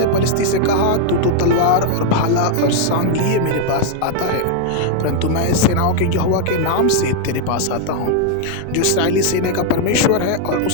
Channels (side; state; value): both; different; correlation 0.00